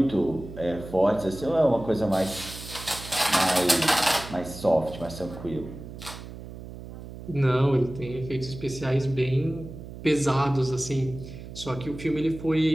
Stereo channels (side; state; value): right; noise; hum, 13 dB below the sound